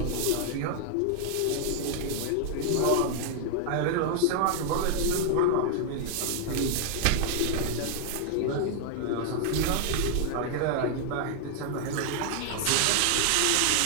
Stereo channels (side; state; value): both; different; correlation 0.00